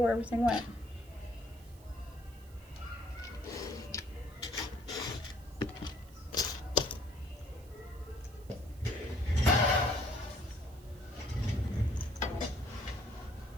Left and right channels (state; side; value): noise; right; hiss, 25 dB below the sound